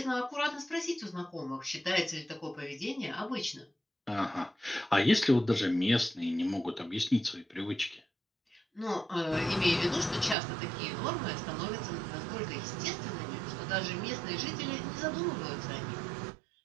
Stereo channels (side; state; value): left; drops out; at 10.4 s